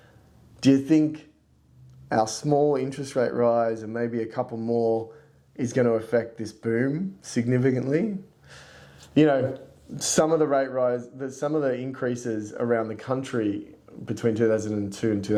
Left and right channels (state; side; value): identical; both; correlation 1.00